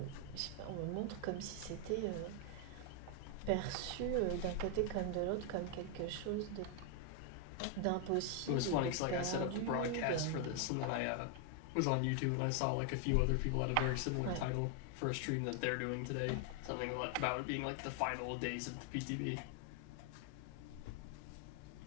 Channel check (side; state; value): both; different; correlation 0.00